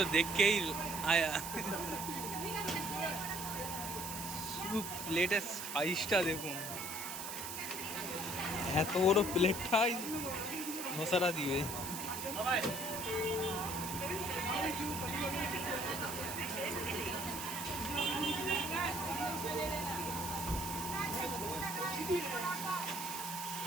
देख के ही आया। প্লেটের সাইজটা দেখুন, এত বড় প্লেটটাই ধোসাটা দিবে।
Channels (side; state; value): right; noise; hiss, 6 dB below the sound